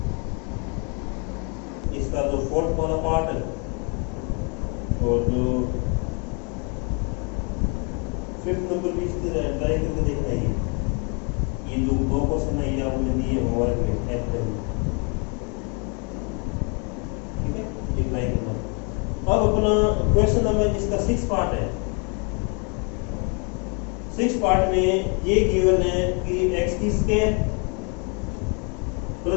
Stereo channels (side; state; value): right; quieter; 35.5 dB